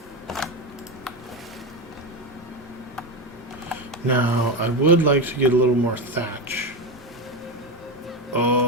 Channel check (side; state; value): both; normal; correlation 0.15